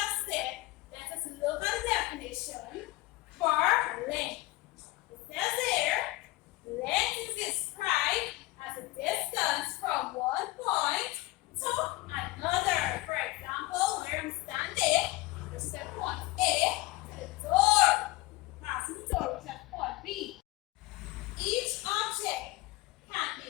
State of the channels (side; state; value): right; quieter; 19.8 dB